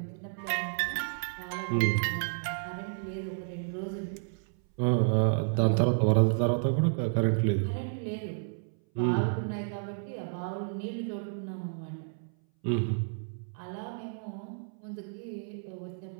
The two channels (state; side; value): silent; left; 57 dB below the other